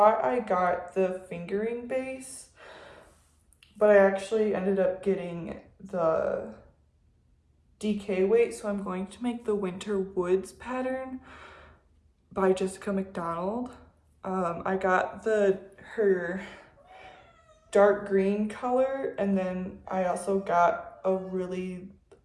I got the fingering base, but I actually ended up getting the DK weight, so I'm going to make the Winter Woods pattern by Jessica McDonald. I got her dark green color, and then I also got a really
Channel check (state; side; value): identical; both; correlation 1.00